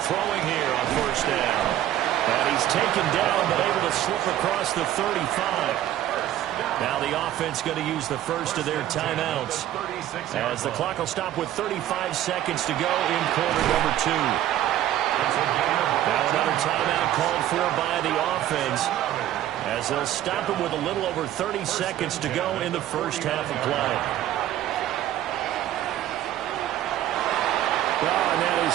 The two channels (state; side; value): quieter; left; 12.7 dB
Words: throwing here on 1st down. And he's taken down but able to slip across the 35. Now the offense going to use the first of their timeouts as the clock will stop with 35 seconds to go in quarter number 2. Now another timeout called for by the offense as they'll stop him with a little over 30 seconds to go in the first half of play. Oh, and that